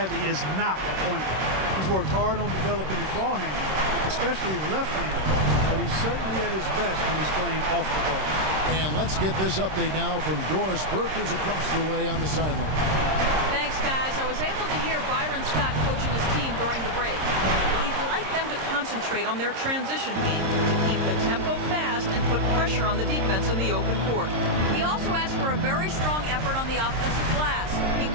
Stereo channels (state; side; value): late; left; 26 ms